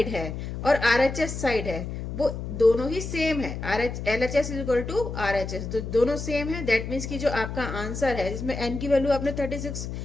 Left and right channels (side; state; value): left; noise; hum, 6 dB below the sound